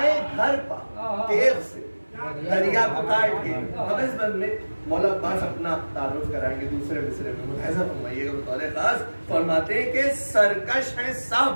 घर पर तेज से दरिया को काट के। अब इस बंद में मौला अब्बास अपना तारुफ कराएंगे दूसरे मिसरे में, मुलाहिजा फरमाइएगा बतौर खास। फरमाते हैं कि सरकश है सब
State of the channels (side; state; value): both; inverted; correlation -1.00